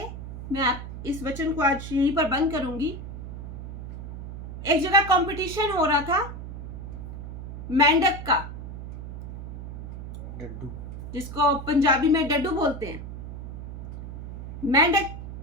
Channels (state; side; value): noise; right; hum, 9 dB below the sound